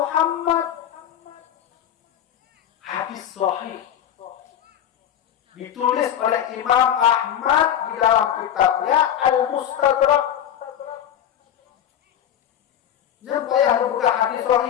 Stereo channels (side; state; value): right; quieter; 10.2 dB